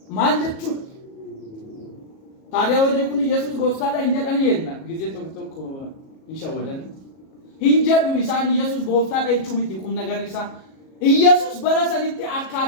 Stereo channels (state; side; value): late; right; 37 ms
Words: ማልጀቹ ታዲያ ወደኩን ኢየሱስ ጎፍታላ እንጀቀን የና ጊዜ ተክተክ ይሻወደን እንጀዱ ኢሳን ኢየሱስ ጎፍታላ ይቹሚት ይቁም ነገር ኢሳ ኢየሱስ በራሰኒት